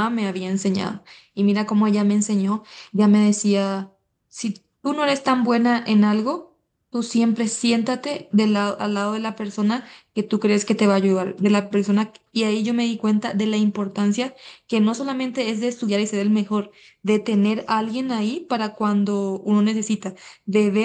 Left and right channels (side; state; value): both; identical; correlation 1.00